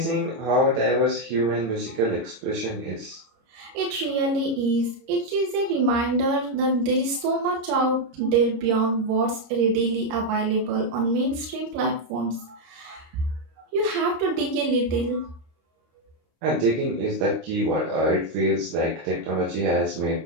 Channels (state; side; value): late; left; 26 ms